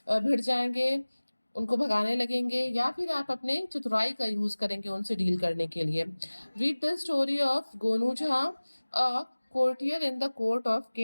भिड़ जाएंगे, उनको भगाने लगेंगे, या फिर आप अपने चतुराई का यूज करेंगे उनसे डील करने के लिए। Read the story of Gonu Jha, a courtier in the court of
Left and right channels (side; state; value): both; inverted; correlation -1.00